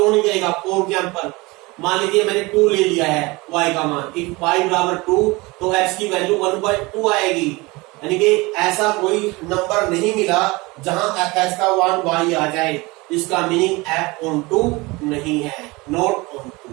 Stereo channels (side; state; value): left; quieter; 23.6 dB